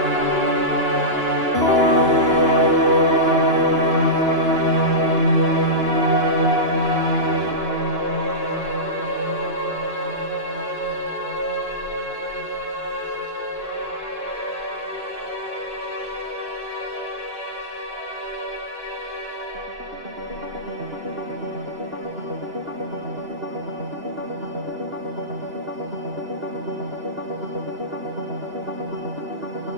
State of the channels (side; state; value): left; late; 2.9 ms